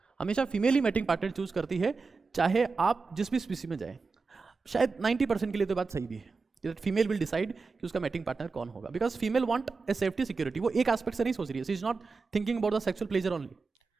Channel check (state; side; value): quieter; left; 4.4 dB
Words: हमेशा फीमेल ही मैटिंग पार्टनर चूज करती है, चाहे आप जिस भी स्पीसी में जाए। शायद 90% के लिए तो बात सही भी है, फीमेल विल डिसाइड कि उसका मैटिंग पार्टनर कौन होगा, because female want a safety security. वो एक एस्पेक्ट से नहीं सोच रही है, she is not thinking about the sexual pleasure only.